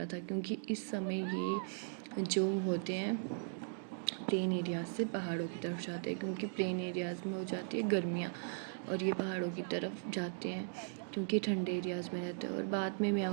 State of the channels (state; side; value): silent; left; digital silence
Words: था, क्योंकि इस समय ये जो होते हैं प्लेन एरियाज से पहाड़ों की तरफ जाते हैं, क्योंकि प्लेन एरियाज़ में हो जाती है गर्मियाँ और ये पहाड़ों की तरफ जाते हैं क्योंकि ठंडे एरियाज़ में रहते हैं। और बाद में मैं